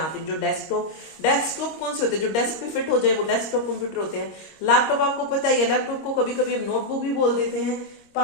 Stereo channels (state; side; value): late; right; 26 ms